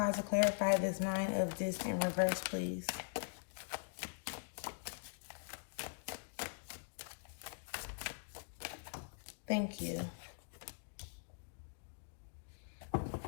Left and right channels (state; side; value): silent; right; digital silence